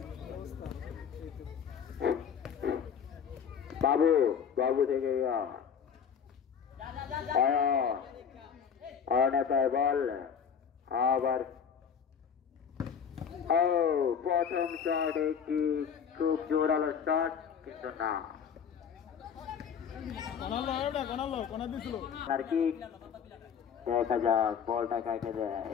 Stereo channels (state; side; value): quieter; right; 7.3 dB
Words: বাবু বাবু থেকে অনেতায় বল আবার প্রথম শট একটি খুব জোরালো শট কিন্তু না আর কি দেখা যাক বলটা কাকে